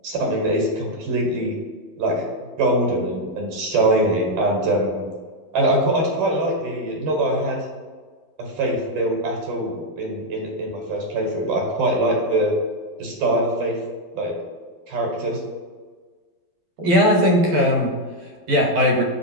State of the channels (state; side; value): late; left; 11 ms